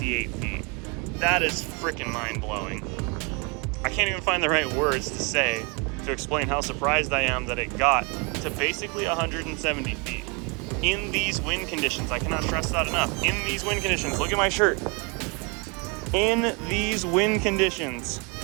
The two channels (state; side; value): quieter; left; 31.9 dB